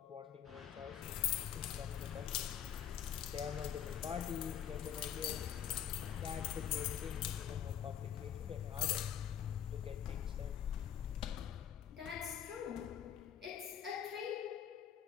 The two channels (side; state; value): right; quieter; 9.4 dB